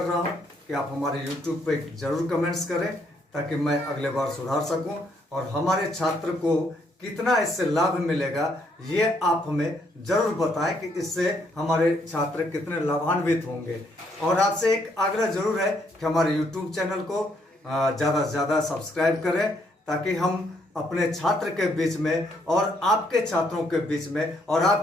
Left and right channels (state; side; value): normal; both; correlation 0.71